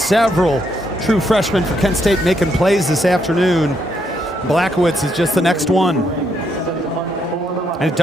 true freshmen for Kent State making plays this afternoon. Blackowitz is just the next one. And it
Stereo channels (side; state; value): both; normal; correlation 0.76